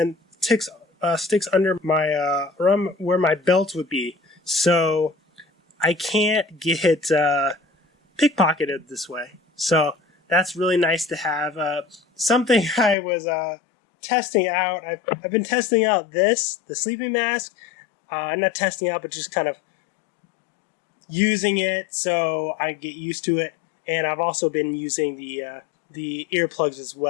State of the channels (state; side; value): drops out; right; at 13.0 s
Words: sticks under my around where my belt would be, so I can't get pickpocketed this way. So that's really nice to have. Something I was testing out. I've been testing out the sleeping mask. Not testing out, but just kind of using it so I get used to it. And I've also been using the earplugs as